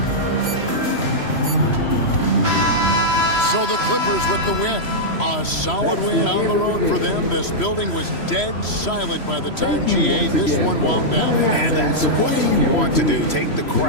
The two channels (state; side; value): late; right; 3.0 ms